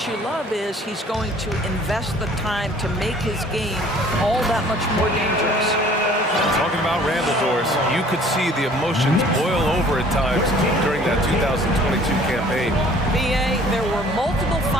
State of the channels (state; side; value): normal; both; correlation 0.53